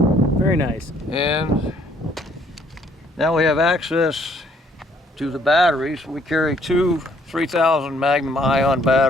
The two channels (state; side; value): normal; both; correlation 0.64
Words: Very nice. And now we have access to the batteries. We carry two 3000 Magnum ion